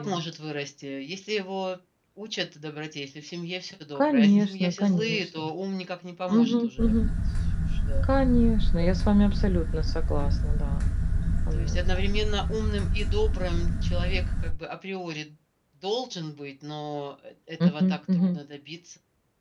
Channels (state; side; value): identical; both; correlation 1.00